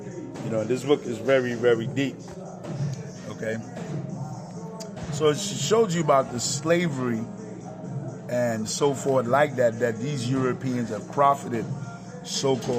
You know, this book is very, very deep. Okay. So it shows you about the slavery and so forth like that these Europeans have profited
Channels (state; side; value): identical; both; correlation 1.00